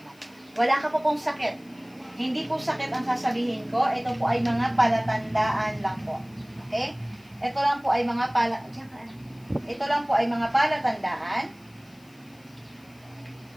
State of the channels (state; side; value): noise; left; hiss, 29 dB below the sound